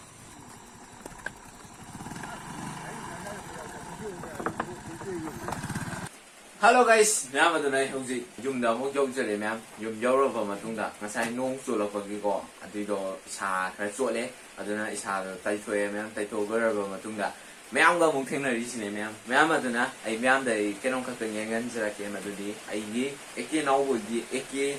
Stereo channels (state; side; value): identical; both; correlation 1.00